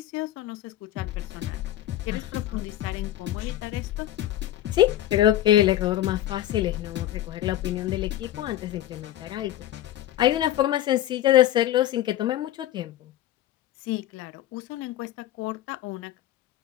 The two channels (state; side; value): quieter; right; 13.2 dB